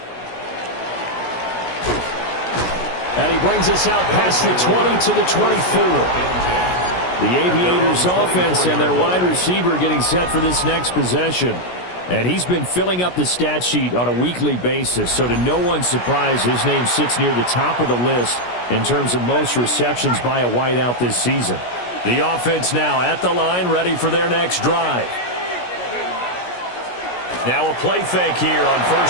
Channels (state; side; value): late; right; 17 ms